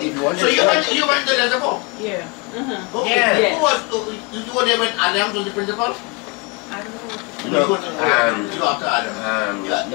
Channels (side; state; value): right; quieter; 28.4 dB